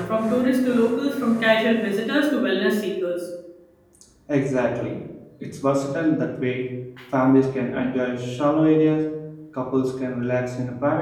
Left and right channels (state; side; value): identical; both; correlation 1.00